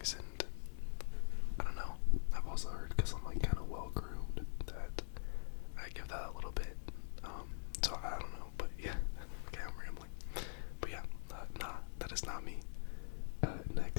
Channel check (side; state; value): right; silent; digital silence